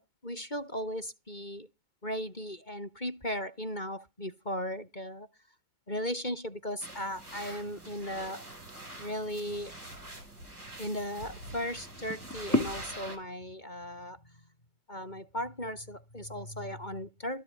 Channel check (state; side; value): late; right; 2.2 ms